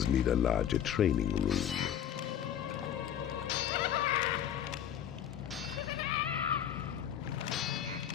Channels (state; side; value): quieter; right; 10.0 dB